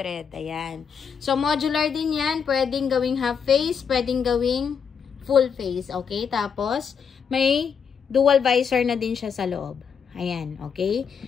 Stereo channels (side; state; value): right; quieter; 6.7 dB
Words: Ayan. So, modular din yan. Pwedeng gawing half face. Pwedeng gawing full face. Okay? Tapos, may dual visor na din siya sa loob. Ayan, okay?